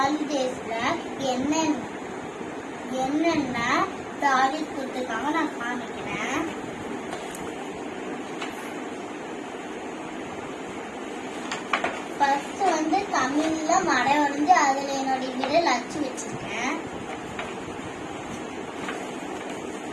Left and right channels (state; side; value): identical; both; correlation 1.00